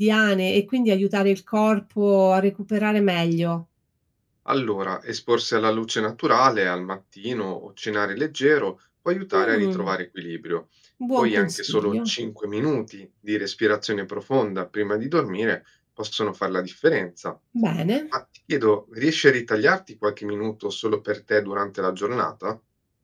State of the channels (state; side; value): identical; both; correlation 1.00